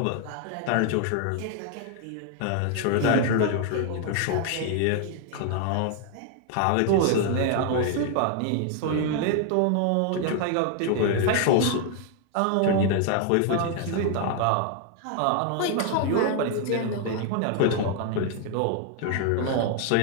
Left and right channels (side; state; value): both; different; correlation 0.00